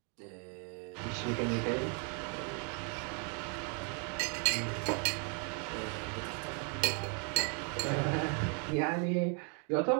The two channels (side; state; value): left; quieter; 39.3 dB